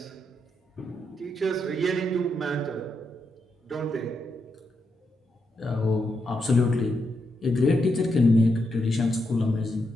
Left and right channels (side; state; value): both; normal; correlation 0.82